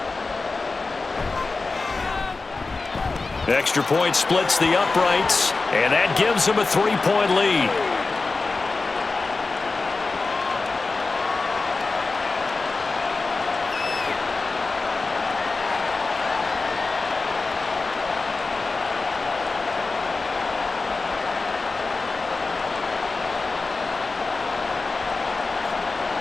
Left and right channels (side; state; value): right; quieter; 3.8 dB